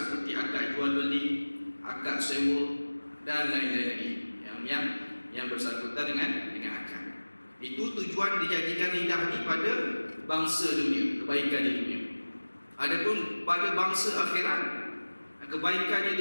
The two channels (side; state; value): both; inverted; correlation -1.00